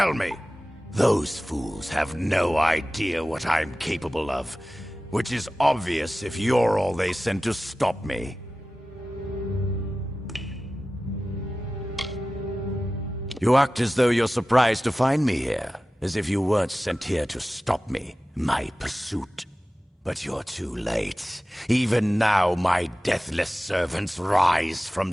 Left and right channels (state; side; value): normal; both; correlation 0.96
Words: me. Those fools have no idea what I'm capable of, which is obvious if you're all they sent to stop me. You act as though you're surprised to find me here. As if you weren't sent here to stop me, my pursuit. But you're too late. Even now, my deathless servants rise from